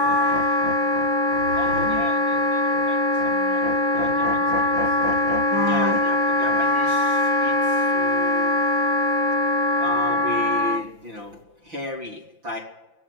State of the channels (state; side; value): late; left; 5.9 ms